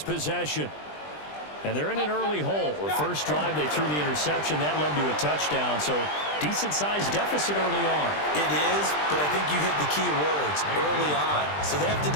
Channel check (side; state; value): right; late; 20 ms